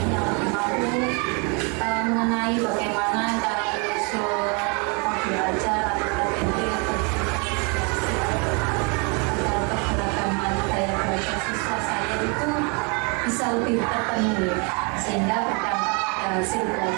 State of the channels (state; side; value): quieter; left; 33.4 dB